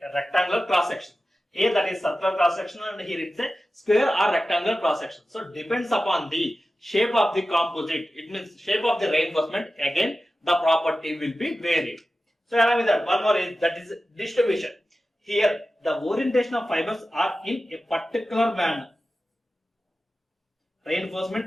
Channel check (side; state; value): both; normal; correlation 0.94